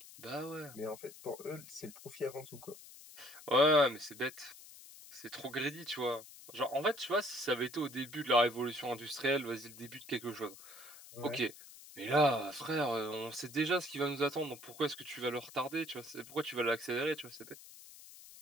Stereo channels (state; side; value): noise; left; hiss, 17 dB below the sound